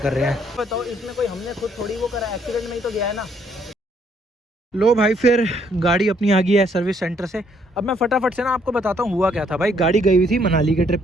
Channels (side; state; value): both; normal; correlation 0.68